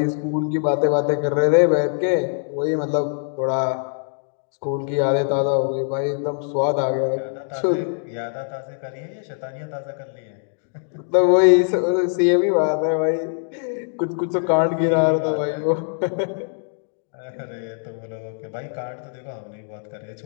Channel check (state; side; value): silent; right; digital silence